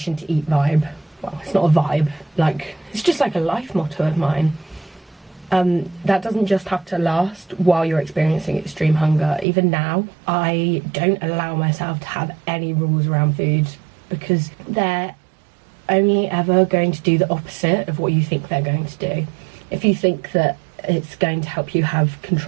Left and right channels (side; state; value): left; drops out; at 9.5 s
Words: to eat vibe. Well, it's not a vibe, like, it's just like a life motto of mine. That doesn't just have to last while you're experiencing extreme hunger. Even now, I don't allow myself to have any rules around food, because they're only ever going to do the opposite of what you think they're going to do. If you think that it's going to help you have